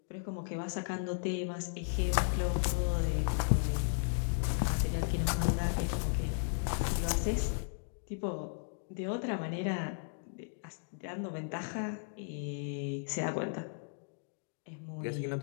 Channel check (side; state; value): right; silent; digital silence